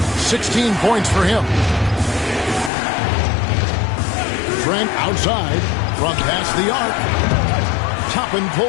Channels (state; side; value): drops out; right; at 2.7 s